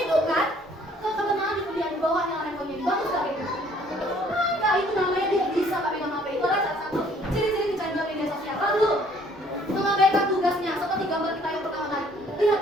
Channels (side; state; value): both; normal; correlation 0.59